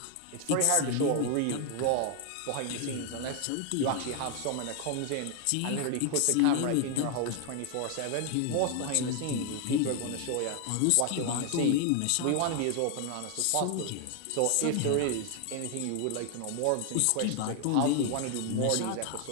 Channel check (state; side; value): different; both; correlation 0.00